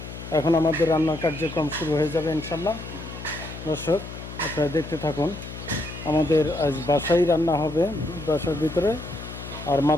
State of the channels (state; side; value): noise; left; hum, 11 dB below the sound